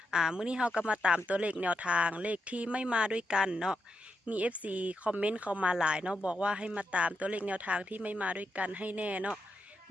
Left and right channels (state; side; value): normal; both; correlation 0.84